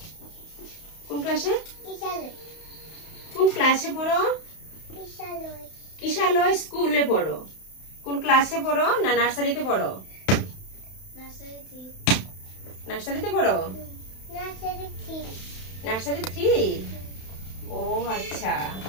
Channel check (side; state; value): right; late; 31 ms